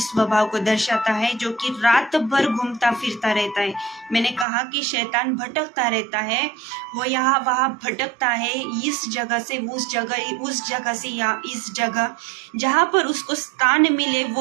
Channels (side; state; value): left; drops out; at 4.5 s